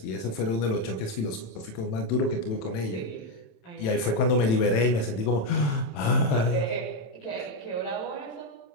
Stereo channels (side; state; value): right; late; 27 ms